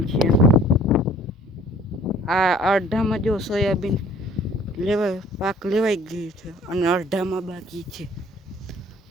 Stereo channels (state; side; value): normal; both; correlation 0.54